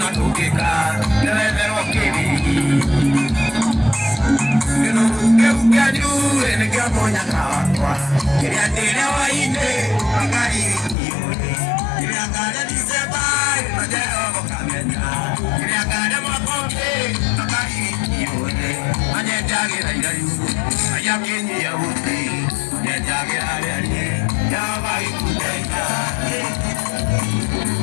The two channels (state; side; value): drops out; right; at 11.0 s